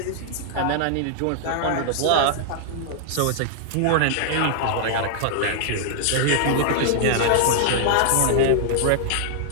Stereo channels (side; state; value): both; different; correlation -0.01